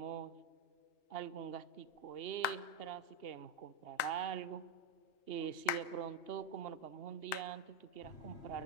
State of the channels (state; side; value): late; right; 3.9 ms